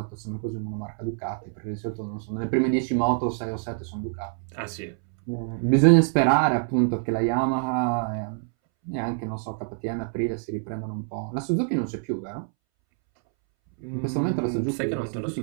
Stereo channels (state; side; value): silent; left; 61 dB below the other